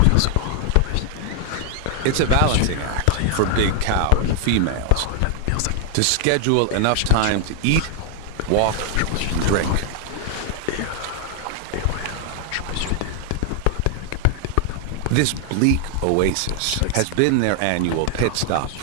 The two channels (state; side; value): different; both; correlation 0.00